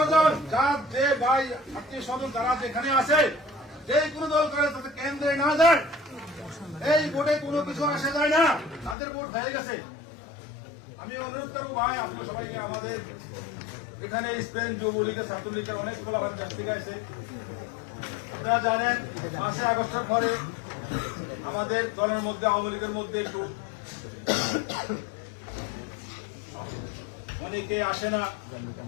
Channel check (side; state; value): right; drops out; at 9.0 s